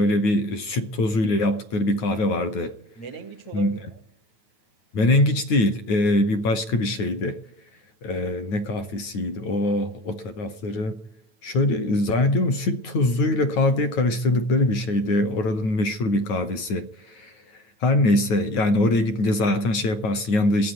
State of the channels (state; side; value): late; right; 9.2 ms